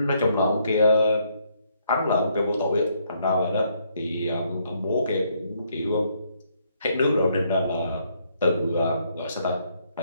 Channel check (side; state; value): both; inverted; correlation -0.71